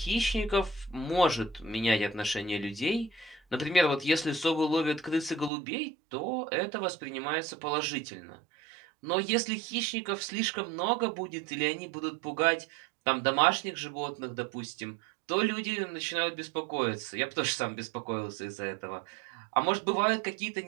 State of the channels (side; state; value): left; drops out; at 5.5 s